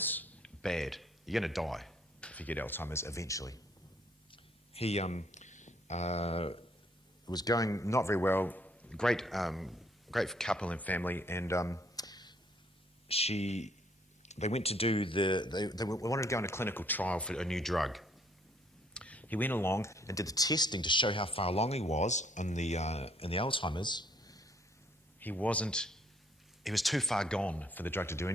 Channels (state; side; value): normal; both; correlation 0.65